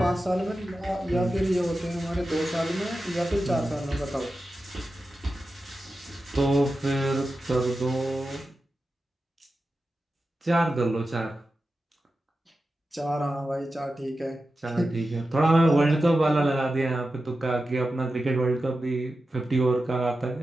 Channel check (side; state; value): both; normal; correlation 0.92